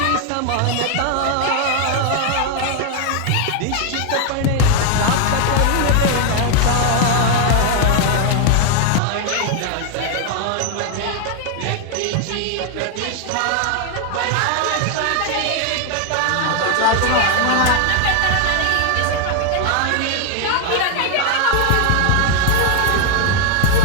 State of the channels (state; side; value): different; both; correlation 0.00